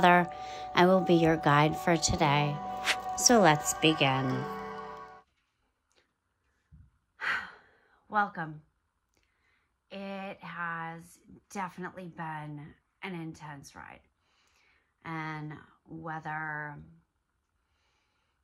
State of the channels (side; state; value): both; identical; correlation 1.00